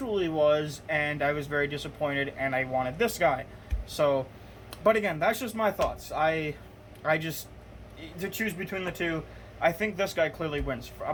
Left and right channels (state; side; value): identical; both; correlation 1.00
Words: was, and I was very disappointed, and I wanted this guy. So, but again, that's just my thoughts. I just, to choose between the two, I think this guy clearly wins.